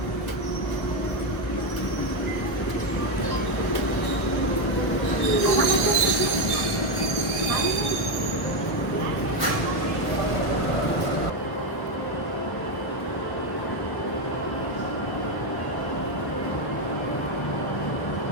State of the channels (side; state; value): right; late; 1.2 ms